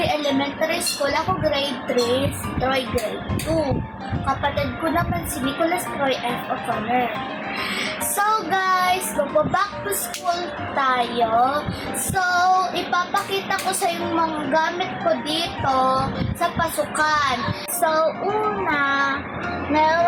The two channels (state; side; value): identical; both; correlation 1.00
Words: Elementary School, ako grade 3, si Troy grade 2. Kapatid ko naman si Nicholas Troy F. O'Connor. So guys, magbaback to school tayo. So, ipapakita ko sa yung mga gamit ko dito sa pasukan. So, una,